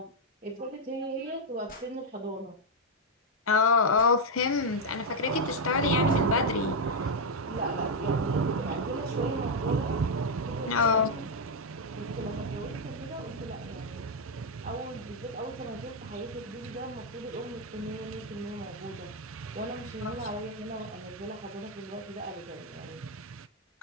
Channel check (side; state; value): both; normal; correlation 0.00